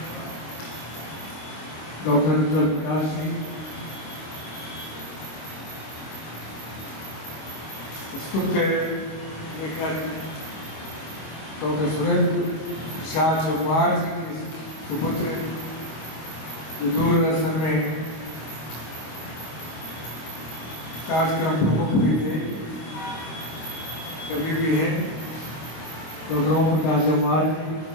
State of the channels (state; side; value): late; right; 26 ms